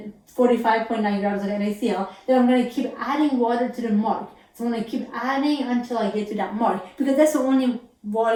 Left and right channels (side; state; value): both; identical; correlation 1.00